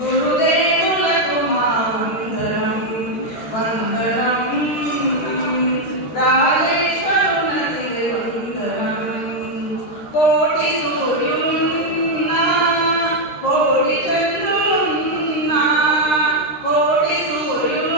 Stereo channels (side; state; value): right; late; 13 ms